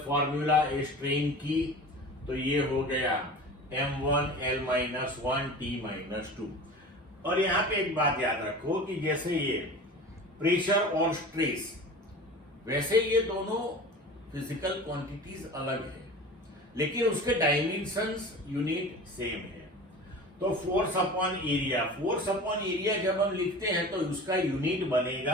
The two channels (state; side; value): normal; both; correlation 0.37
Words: फॉर्मूला स्ट्रेन की, तो ये हो गया m1l-1 t-2। और यहां पे एक बात याद रखो कि जैसे ये प्रेशर और स्ट्रेस, वैसे ये दोनों फिजिकल क्वांटिटीज अलग है, लेकिन उसके डायमेंशंस यूनिट सेम है। तो फोर्स अपॉन एरिया जब हम लिखते हैं तो उसका यूनिट